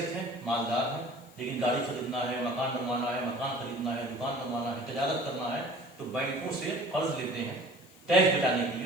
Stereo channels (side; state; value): left; noise; hiss, 26 dB below the sound